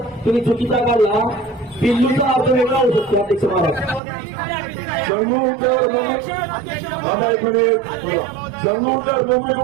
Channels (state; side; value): drops out; left; at 4.0 s